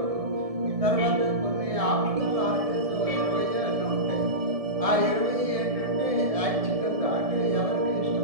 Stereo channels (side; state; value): left; late; 1.7 ms